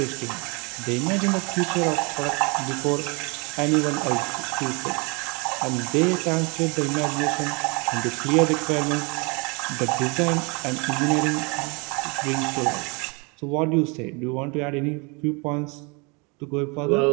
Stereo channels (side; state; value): left; quieter; 30.5 dB